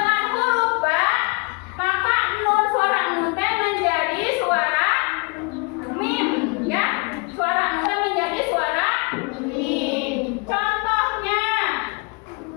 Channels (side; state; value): right; quieter; 31.9 dB